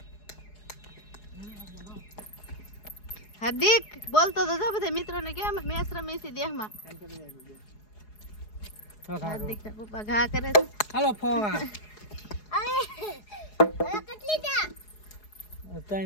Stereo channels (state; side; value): late; right; 4.8 ms